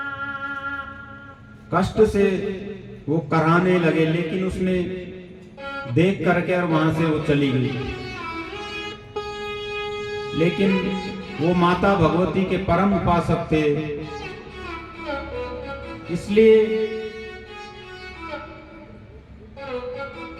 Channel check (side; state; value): both; identical; correlation 1.00